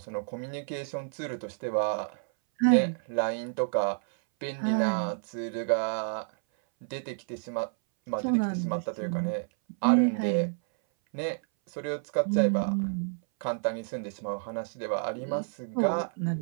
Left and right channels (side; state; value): left; silent; 58 dB below the other